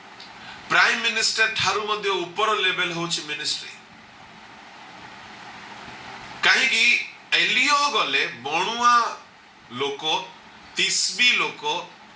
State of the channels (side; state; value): both; identical; correlation 1.00